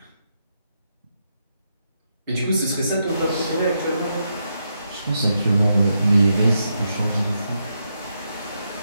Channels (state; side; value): inverted; both; correlation -0.82